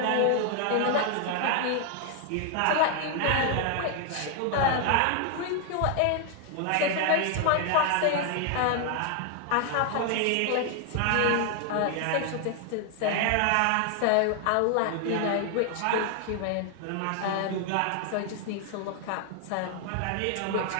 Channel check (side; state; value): both; different; correlation 0.00